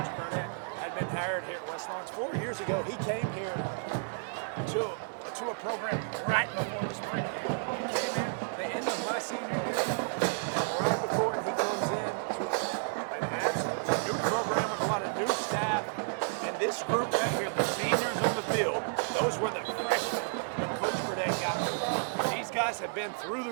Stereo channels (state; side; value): silent; left; 57 dB below the other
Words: Burdett had been hired here at West Lawrence. 4 years ago, he came here to a program right before the spring game. He came in the end of my senior year, and right before, and he comes in to an absolutely new program with a lot of new staff. And this group right here, the seniors on the field, those were the freshmen when Coach Burdett got here. These guys have been through